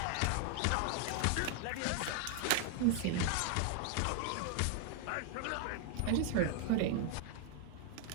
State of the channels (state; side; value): different; both; correlation 0.00